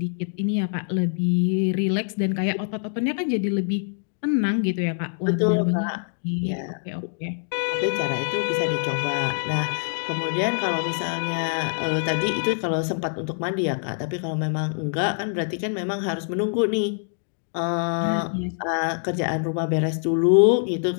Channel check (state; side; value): silent; right; digital silence